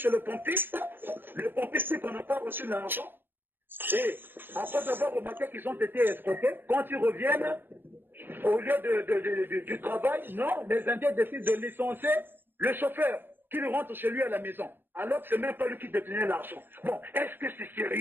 chez le pompiste. Le pompiste dit qu'on n'a pas reçu l'argent. Et après avoir remarqué qu'ils ont été escroqués, quand ils reviennent au lieu du travail, non, les Indiens décident de licencier le chauffeur qui rentre chez lui à la maison. Alors que ce n'est même pas lui qui détenait l'argent. Bon, est-ce que c'est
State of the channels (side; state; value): left; late; 0.098 ms